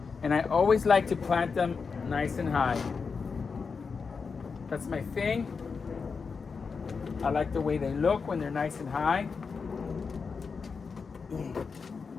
and I always like to plant them nice and high. That's my thing. I like the way they look when they're nice and high.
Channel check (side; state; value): right; quieter; 5.2 dB